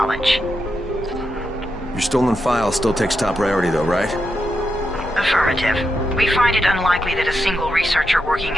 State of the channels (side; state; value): both; normal; correlation 0.85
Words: Your stolen file still takes top priority though, right? Affirmative. We find it unlikely that a single researcher working